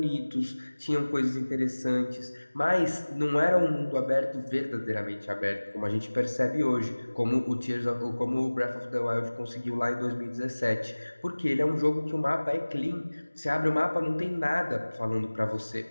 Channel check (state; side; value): inverted; both; correlation -1.00